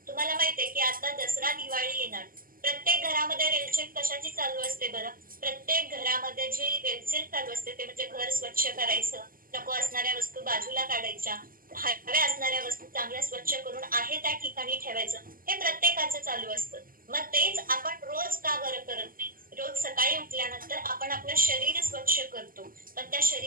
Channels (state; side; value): late; left; 0.41 ms